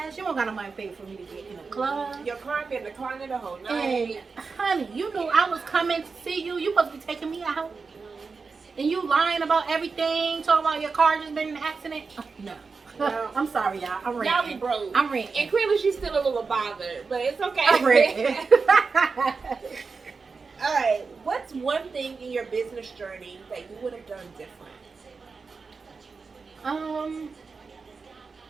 You don't got no money to pay for me to get in the club. Your car been declining the whole night. And honey, you knew I was coming to see you. You supposed to be taking me out. And you lying about everything, talking about your car just been in an accident. No. I'm sorry, y'all. I'm ranting. Y'all be broke. I'm ranting. And clearly she's still a little bothered, but it's okay. I'm ranting. All right. What's one thing in your business journey that you would have done different?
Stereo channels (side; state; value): left; quieter; 4.7 dB